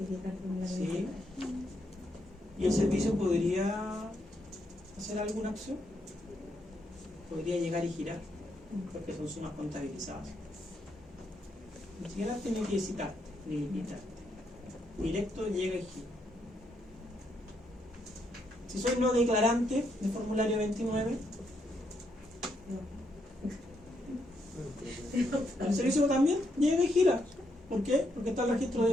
el formulario Sí. 29. ¿Y el servicio podría hacer alguna acción? Podría llegar y girar, porque son sumas contabilizadas. Ni siquiera tiene que citarte, ni invitarte. Directo llega y gira. Si soy no declarante de formulario 29, el servicio también llega y gira. ¿Por qué? Porque está el registro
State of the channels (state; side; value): normal; both; correlation 0.77